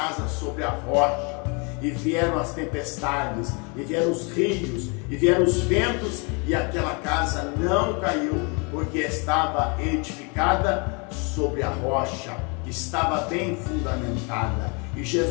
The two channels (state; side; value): quieter; right; 32.9 dB